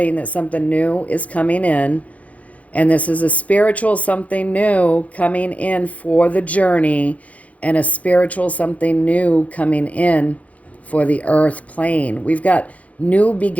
that something new is coming in, and this is a spiritual something new coming in for the journey, and a spiritual something new coming in for the earth plane. We've got new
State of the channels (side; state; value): right; late; 0.068 ms